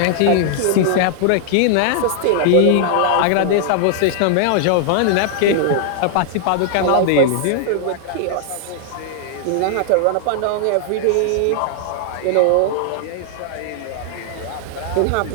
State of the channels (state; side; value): different; both; correlation -0.01